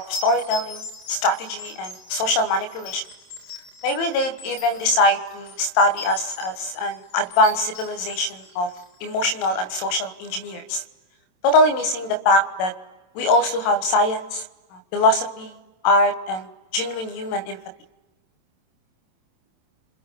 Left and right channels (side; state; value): right; late; 27 ms